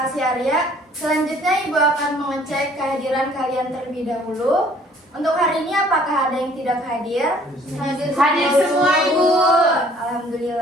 Arya. Selanjutnya Ibu akan mengecek kehadiran kalian terlebih dahulu. Untuk hari ini apakah ada yang tidak hadir? Hadir semua, Ibu.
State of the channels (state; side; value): normal; both; correlation 0.57